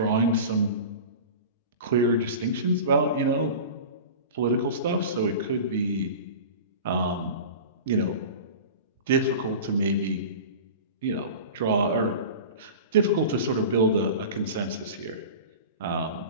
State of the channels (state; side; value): inverted; both; correlation -0.34